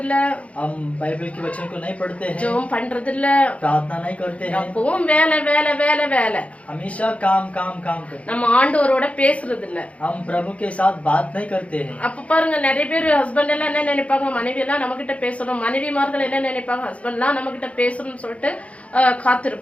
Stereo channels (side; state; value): right; late; 0.064 ms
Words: இல்ல, हम बाइबल के वचन को नहीं पढ़ते हैं, ஜெபம் பண்றது இல்ல, प्रार्थना नहीं करते हैं, எப்பவும் வேலை வேலை வேலை வேலை. हमेशा काम काम काम करते हैं। நம்ம ஆண்டவரோட பேசுறது இல்ல. हम प्रभु के साथ बात नहीं करते हैं। அப்ப பாருங்க, நிறைய பேர் ஹஸ்பண்ட் எல்லாம் என்ன நினைப்பாங்க, மனைவி எல்லாம் நம்ம கிட்ட பேசணும், மனைவிமார்கள் என்ன நினைப்பாங்க, ஹஸ்பண்ட் எல்லாம் நம்ம கிட்ட பேசணும்னு சொல்லிட்டு